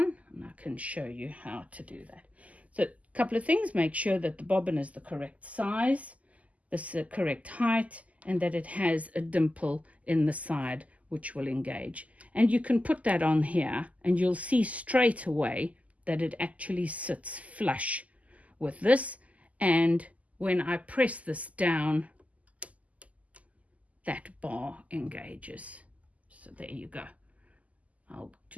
and I can show you how to do that. So a couple of things: make sure that the bobbin is the correct size, the correct height, and that it has a dimple in the side which will engage. And you can put that on here and you'll see straight away that it actually sits flush with this. And when I press this down, that bar engages. So there you go. I'll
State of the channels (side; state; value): left; late; 0.072 ms